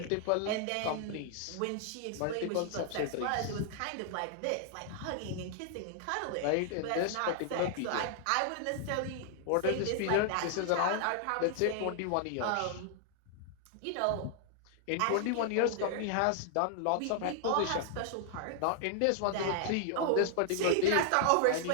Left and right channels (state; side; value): different; both; correlation -0.01